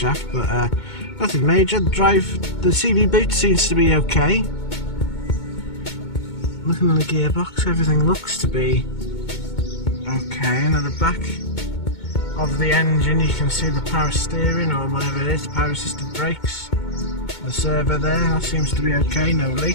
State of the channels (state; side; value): late; right; 2.2 ms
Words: but nothing major. The CV boot seems to be okay. Looking at the gearbox, everything looks to be okay. And at the back of the engine you can see the power steering, or whatever it is, the power assisted brakes. The servo there, that seems to be okay, no